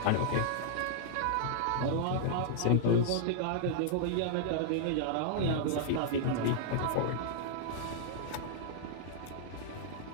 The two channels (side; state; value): both; different; correlation -0.01